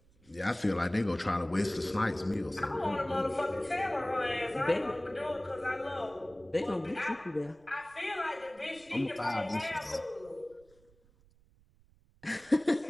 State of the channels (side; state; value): right; noise; rumble, 29 dB below the sound